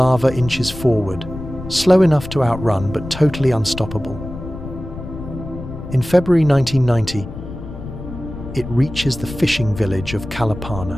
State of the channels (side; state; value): left; noise; rumble, 11 dB below the sound